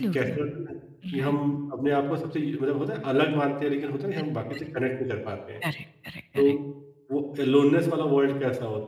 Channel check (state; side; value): identical; both; correlation 1.00